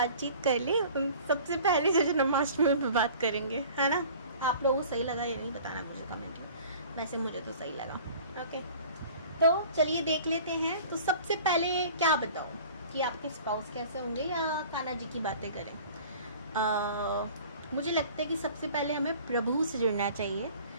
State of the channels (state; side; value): inverted; both; correlation -0.46